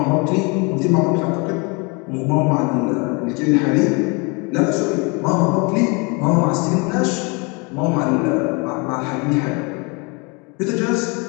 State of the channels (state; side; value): quieter; right; 30.4 dB